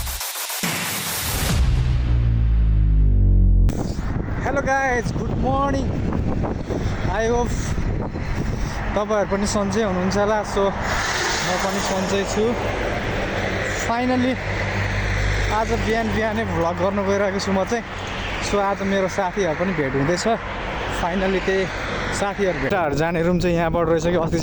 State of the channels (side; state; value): both; identical; correlation 1.00